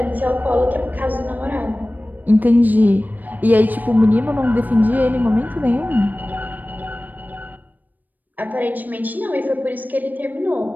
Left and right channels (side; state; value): left; late; 0.085 ms